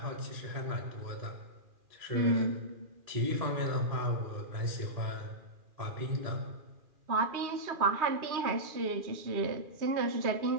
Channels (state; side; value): late; left; 2.4 ms